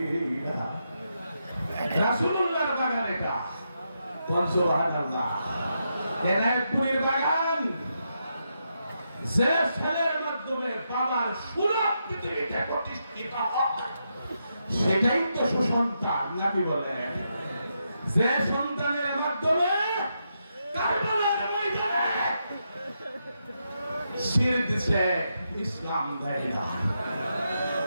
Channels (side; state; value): both; inverted; correlation -0.83